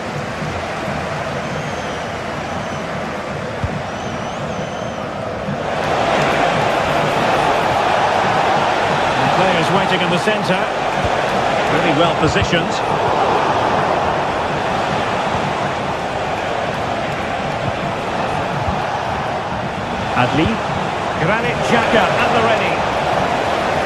And players waiting in the centre. Really well positioned. Adli. Granit Xhaka at the ready.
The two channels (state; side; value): identical; both; correlation 1.00